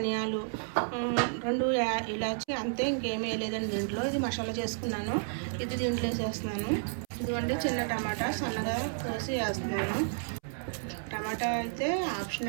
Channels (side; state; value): left; silent; 57 dB below the other